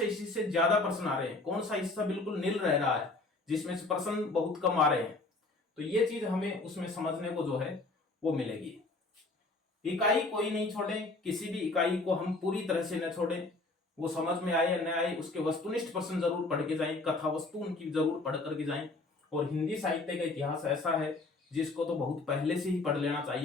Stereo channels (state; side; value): quieter; right; 3.2 dB